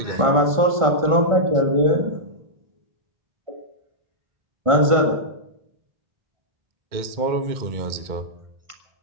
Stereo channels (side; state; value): left; late; 1.5 ms